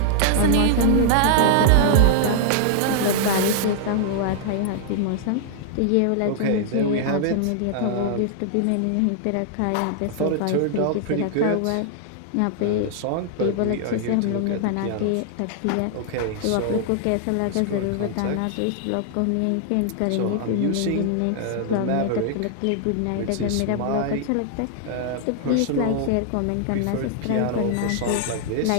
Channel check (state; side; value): different; both; correlation 0.00